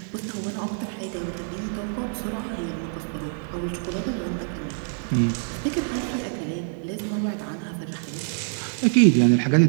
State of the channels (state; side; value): silent; left; 61 dB below the other